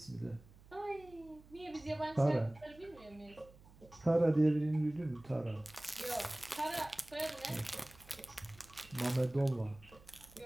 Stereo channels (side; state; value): right; noise; hum, 23 dB below the sound